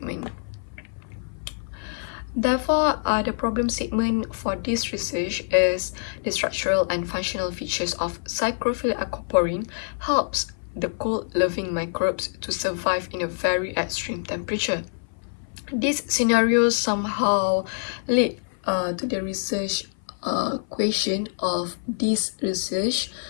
Therefore, the problem statement for this research is the structural and functional features of psychrophilic aquaporin helps the cold-loving microbes to survive in a very extreme temperature. These scenarios somehow lead to the research question of this research,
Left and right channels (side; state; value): right; silent; 57 dB below the other